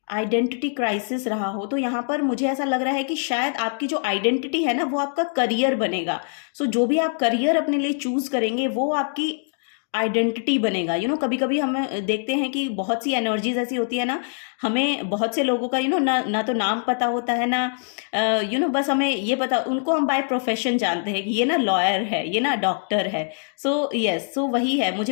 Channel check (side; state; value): right; silent; digital silence